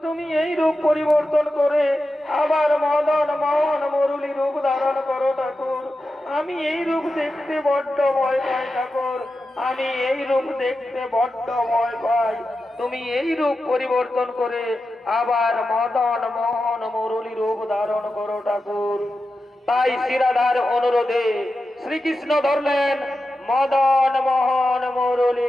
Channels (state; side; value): normal; both; correlation 0.91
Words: তুমি এই রূপ পরিবর্তন করে আবার মদন মোহন মুরলী রূপ ধারণ করো ঠাকুর, আমি এই রূপ দেখতে বড্ড ভয় পাই ঠাকুর, আমি এই রূপ দেখতে বড্ড ভয় পাই, তুমি এই রূপ পরিবর্তন করে আবার মদন মোহন মুরলী রূপ ধারণ করো ঠাকুর। তাই শ্রীরাধার অনুরোধে শ্রীকৃষ্ণ ধরলেন মদন মোহন মুরলী